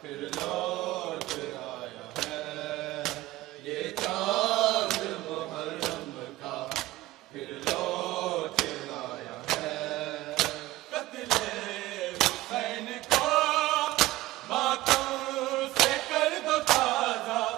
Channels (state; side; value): quieter; left; 17.3 dB